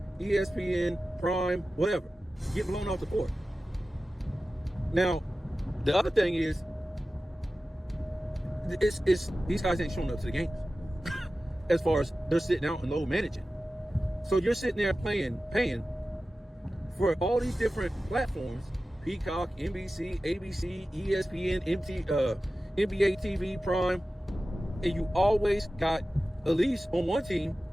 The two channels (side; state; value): both; normal; correlation 0.95